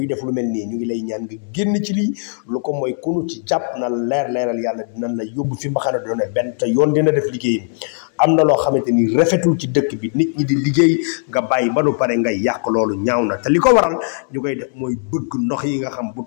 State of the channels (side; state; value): right; silent; 65 dB below the other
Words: def lu mel nii ñu ngi lay ñaan nga génn ci lii lu ko mooy kunu ci jàpp na leeral yàlla dinañ la yóbbu fi mbaxane doone benn te yoon dina def liggéeyam am na loo xamante ni rafetul ci dëkk bi nit ñi di liggéey nga bàyyi ba nu pare ngay yàq loolu ñaaw na te li ko waral ñu koy def mooy bëgg ndox yi nga xam bu